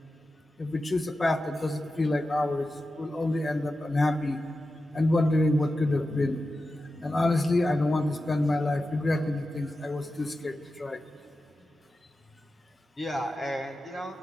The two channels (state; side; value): normal; both; correlation 0.92